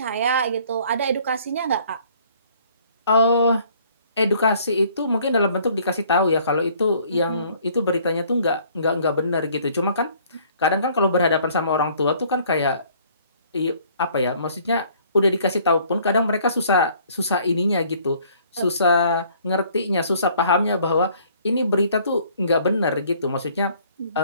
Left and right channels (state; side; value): inverted; both; correlation -0.59